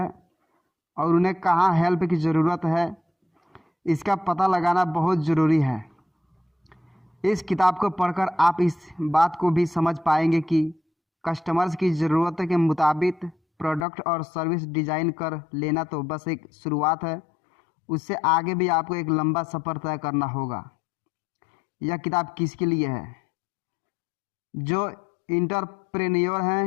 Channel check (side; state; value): right; drops out; at 13.9 s